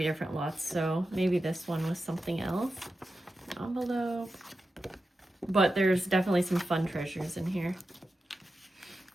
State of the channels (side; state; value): both; normal; correlation 0.91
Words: different lots, so maybe this one was something else. Envelope. But there's definitely some fun treasures in here.